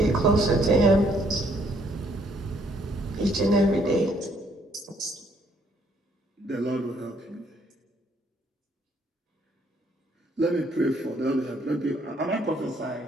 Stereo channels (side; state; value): both; normal; correlation 0.68